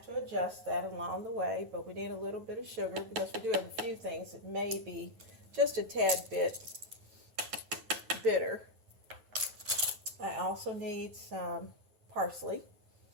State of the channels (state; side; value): late; left; 9.4 ms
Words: to adjust that along the way, but we need a little bit of sugar because we do have a few things that may be just a tad bit bitter. I also need some parsley